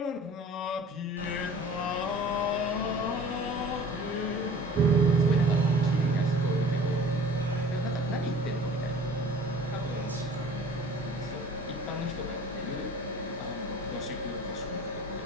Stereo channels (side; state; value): both; normal; correlation 0.45